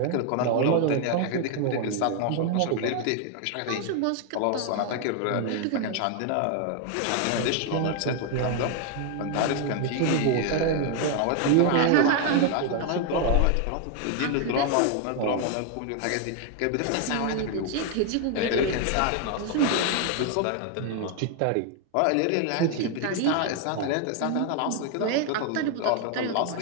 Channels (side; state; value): both; different; correlation 0.00